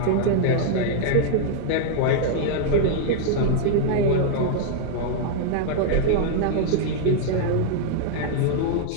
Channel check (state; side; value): different; both; correlation 0.00